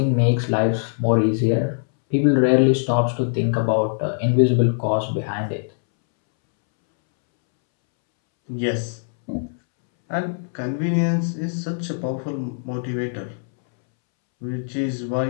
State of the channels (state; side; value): silent; right; 64 dB below the other